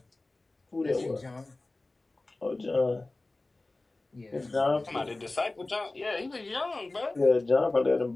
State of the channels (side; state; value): right; quieter; 3.0 dB